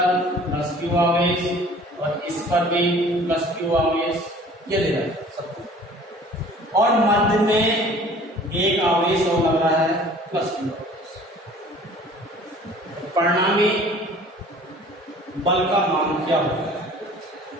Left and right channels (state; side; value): normal; both; correlation 0.49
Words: प्लस क्यू आवेश और इस पर भी प्लस क्यू आवेश, ये दे रहा है सबको। और मध्य में एक आवेश और लग रहा है प्लस क्यू आवेश। परिणामी बल का मान क्या होगा